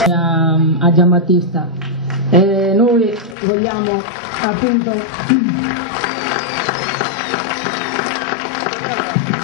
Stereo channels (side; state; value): right; drops out; at 3.4 s